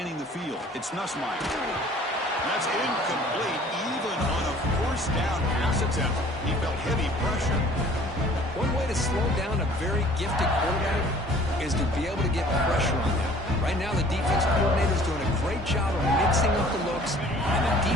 the field. It's Nussmeier. That's incomplete. Even on a 4th down pass attempt, he felt heavy pressure. One way to slow down a very gifted quarterback is to be able to get pressure on them. Right now, the defense coordinator is doing a great job of mixing up the looks, and the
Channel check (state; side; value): normal; both; correlation 0.52